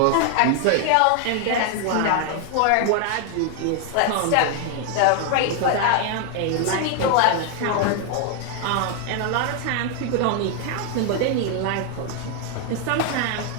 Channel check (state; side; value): different; both; correlation 0.01